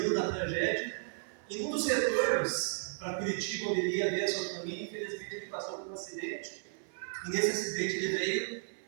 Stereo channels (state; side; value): silent; left; 55 dB below the other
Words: na tragédia. E num dos retornos para Curitiba, onde ele ia ver a sua família, infelizmente ele passou por um acidente, e nesse acidente ele veio